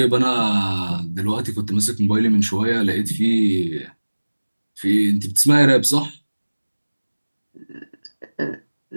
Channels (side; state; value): both; inverted; correlation -1.00